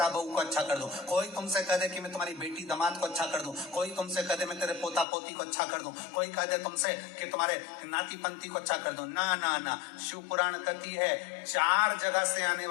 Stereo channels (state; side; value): drops out; right; at 5.1 s